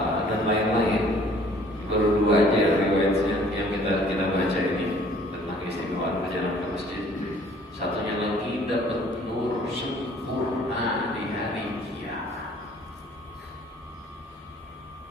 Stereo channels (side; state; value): both; normal; correlation 0.56